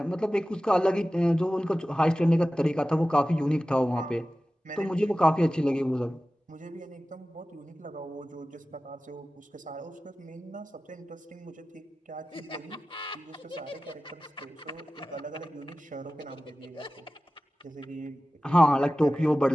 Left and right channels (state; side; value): normal; both; correlation 0.96